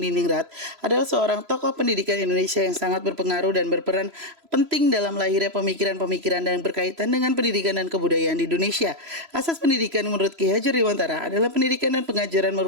adalah seorang tokoh pendidikan Indonesia yang sangat berpengaruh dan berperan penting dalam lahirnya pemikiran-pemikiran yang berkaitan dengan pendidikan dan kebudayaan di Indonesia. Asas pendidikan menurut Ki Hajar Dewantara adalah pendidikan dan pengajaran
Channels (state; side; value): late; left; 3.0 ms